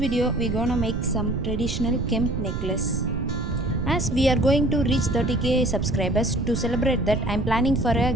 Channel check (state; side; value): noise; right; rumble, 3 dB below the sound